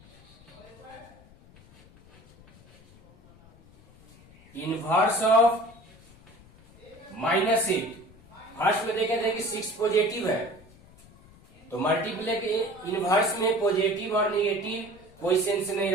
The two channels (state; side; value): noise; left; rumble, 25 dB below the sound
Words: inverse of -8। First में देखे थे कि 6 पॉजिटिव है, तो मल्टीप्लिकेटिव इनवर्स में पॉजिटिव और नेगेटिव कोई सेंस नहीं